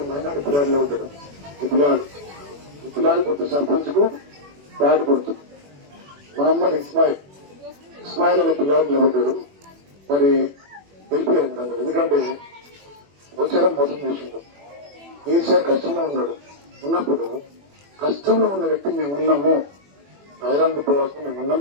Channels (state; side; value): late; left; 21 ms